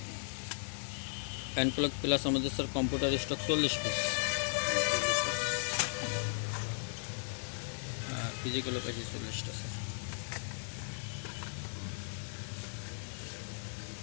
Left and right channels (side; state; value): right; silent; digital silence